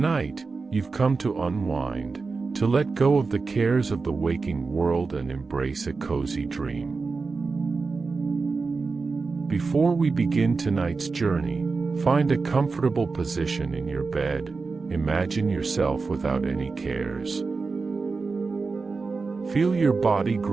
you've come to unwind, to let go of the cares of the waking world and embrace a cozy dream. Before we begin tonight's journey, find a comfortable position in your bed. Imagine yourself without any cares. Feel your body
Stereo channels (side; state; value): left; quieter; 4.3 dB